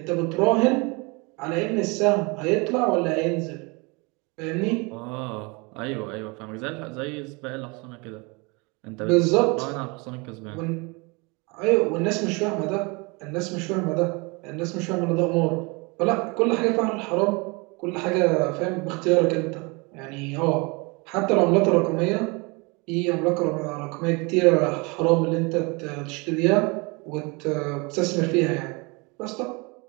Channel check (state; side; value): quieter; left; 28.4 dB